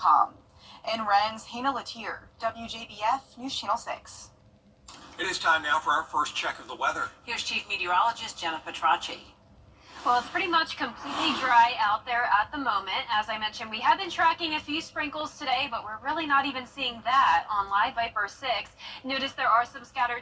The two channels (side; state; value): both; identical; correlation 1.00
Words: In Rennes, Hannah Latier, WJBF News Channel 6. It is time now for our first check of the weather. Here's Chief Meteorologist Jenna Petracci. Well, it's pretty much completely dry out there at the moment. As I mentioned, we have been tracking a few sprinkles today, but we're really not even seeing that on Live Viper 6. Notice there are some scattered